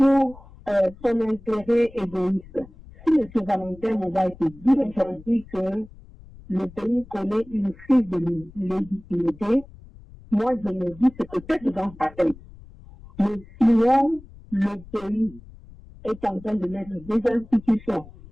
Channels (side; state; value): left; noise; rumble, 20 dB below the sound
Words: son intérêt égoïste. Si M. Valentin Moubaké dit aujourd'hui que le pays connaît une crise de légitimité, moi je me dis c'est peut-être dans sa tête. Mais sinon, le pays est en train de mettre des institutions